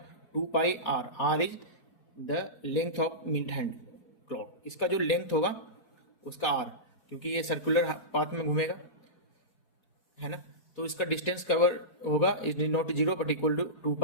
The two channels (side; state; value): right; late; 4.2 ms